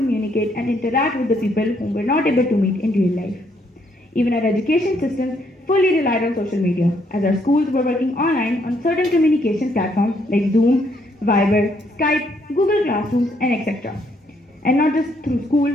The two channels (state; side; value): normal; both; correlation 0.71